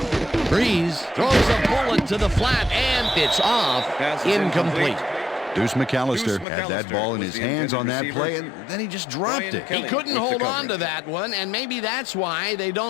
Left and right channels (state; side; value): drops out; right; at 6.5 s